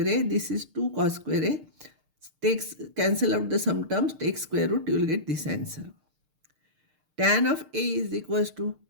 A. This is 2 cos square A. Cancel out the sum terms, take square root, you will get this answer. Tan of A is equals to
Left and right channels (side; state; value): left; late; 6.6 ms